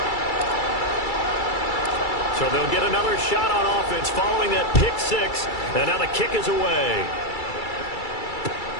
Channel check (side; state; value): right; late; 2.3 ms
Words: So they'll get another shot on offense following that pick-6. And now the kick is away.